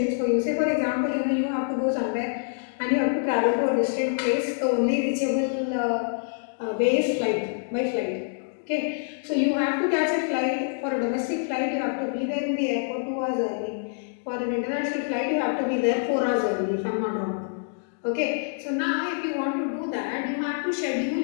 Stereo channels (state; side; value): silent; right; digital silence